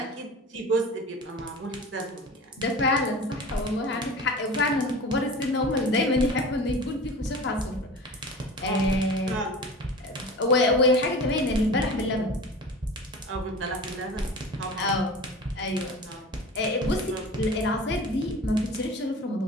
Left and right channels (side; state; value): both; normal; correlation 0.36